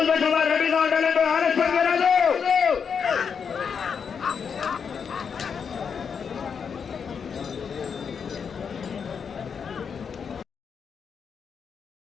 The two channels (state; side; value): quieter; right; 6.5 dB